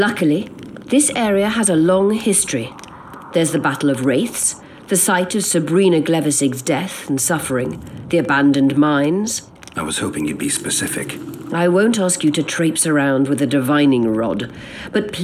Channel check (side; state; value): both; identical; correlation 1.00